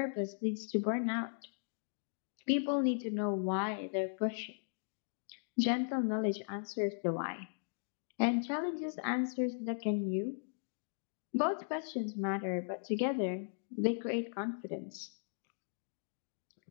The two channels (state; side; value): silent; right; digital silence